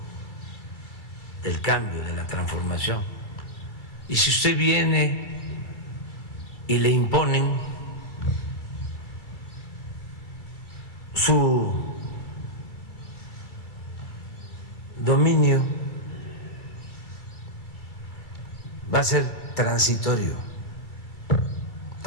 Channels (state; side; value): late; right; 2.3 ms